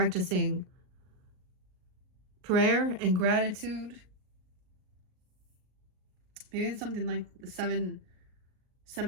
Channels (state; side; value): late; left; 38 ms